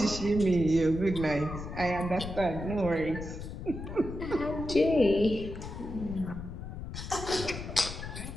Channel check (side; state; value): left; noise; rumble, 8 dB below the sound